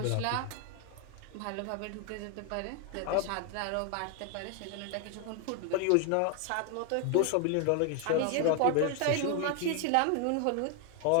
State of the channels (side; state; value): both; different; correlation 0.01